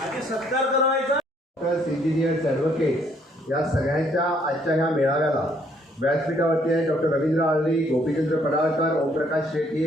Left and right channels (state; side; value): normal; both; correlation 0.66